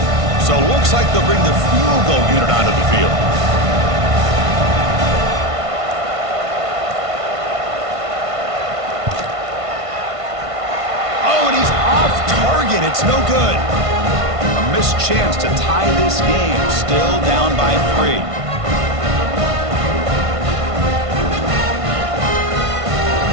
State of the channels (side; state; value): left; late; 1.5 ms